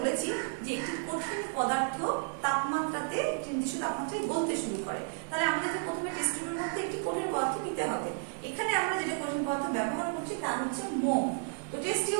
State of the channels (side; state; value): left; silent; 56 dB below the other